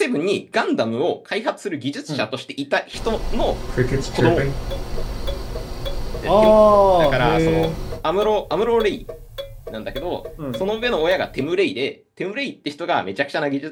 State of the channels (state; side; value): identical; both; correlation 1.00